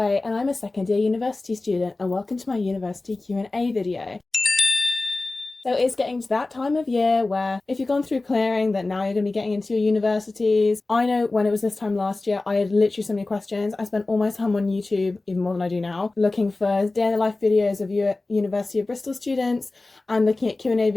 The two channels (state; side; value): quieter; right; 3.2 dB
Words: and I'm a second year university student, and welcome to my university Q&A video. So it's getting to that time of year where if you've gone through clearing, that now you're going to be getting into your universities. I know when it was this time last year, I had literally so many questions. I spent all my time on YouTube, even more than I do now, looking for day in the life videos of University of Bristol students and looking at Q&A